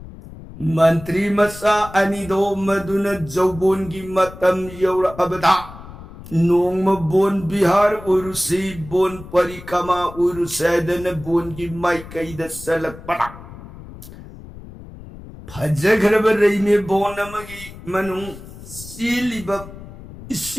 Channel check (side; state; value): left; noise; rumble, 16 dB below the sound